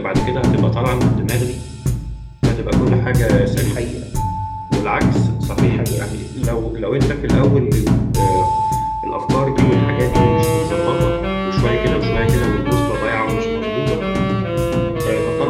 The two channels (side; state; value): both; identical; correlation 1.00